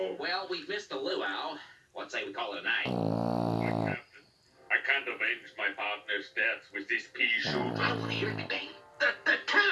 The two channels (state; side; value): identical; both; correlation 1.00